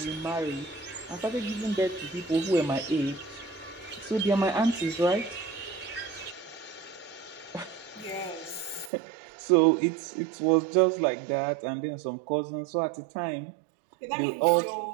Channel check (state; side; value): drops out; left; at 8.9 s